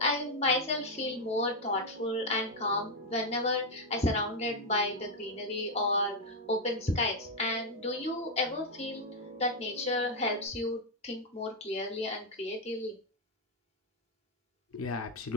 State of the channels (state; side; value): normal; both; correlation 0.01